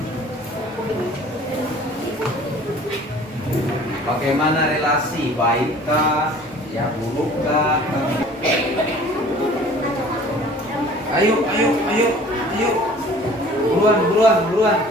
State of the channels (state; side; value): normal; both; correlation 0.48